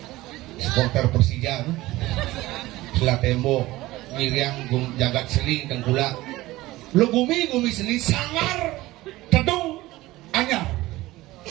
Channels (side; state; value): left; quieter; 18.2 dB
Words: supporter Persija setelah tembok Miriam jagat seli Tengkulak lu gumi seli sangar tedung anyar